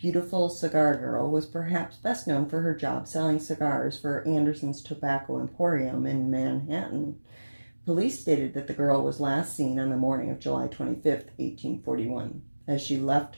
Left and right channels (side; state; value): both; inverted; correlation -1.00